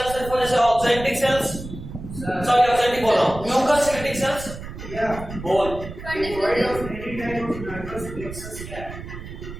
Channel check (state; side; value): noise; right; rumble, 11 dB below the sound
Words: सिर्फ जैसे ऑक्जेंटिक सेल्स, सॉरी ऑक्जेंटिक बोल रहा हूँ, म्यूकस सेक्रेटिंग सेल्स, बोल